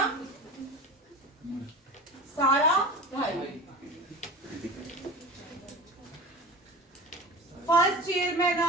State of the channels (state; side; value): normal; both; correlation 0.33